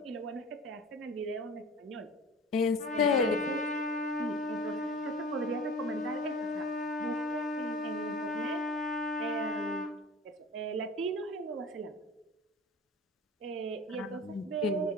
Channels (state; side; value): normal; both; correlation 0.39